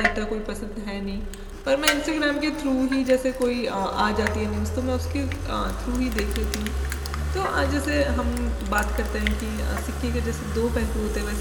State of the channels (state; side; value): identical; both; correlation 1.00